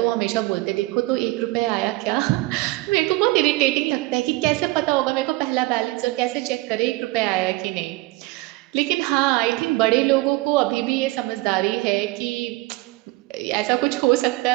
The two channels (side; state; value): left; quieter; 21.0 dB